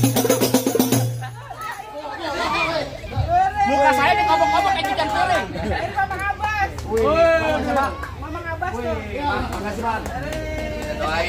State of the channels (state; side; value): identical; both; correlation 1.00